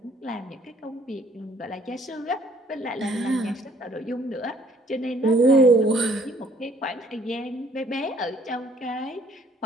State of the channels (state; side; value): normal; both; correlation 0.60